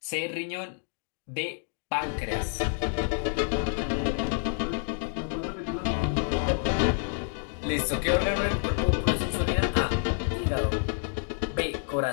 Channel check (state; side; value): silent; right; 59 dB below the other